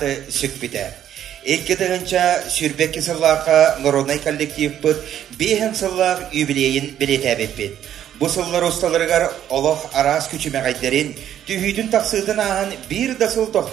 сүк біді. 2 сүрбекке сыллаққа народный коллектив бұд 5 сыллақ юбилейін білетәбет бет. Бұл сыллар ұсталырғар олық арас күчімәғайдерін түйүйдің тақсыдың ағын бір дасыл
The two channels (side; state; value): left; quieter; 10.6 dB